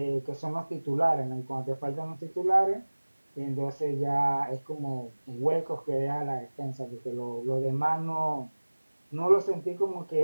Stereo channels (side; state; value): both; inverted; correlation -1.00